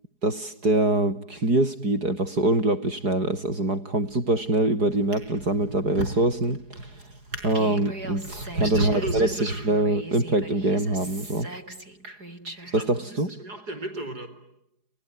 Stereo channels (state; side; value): late; left; 4.8 ms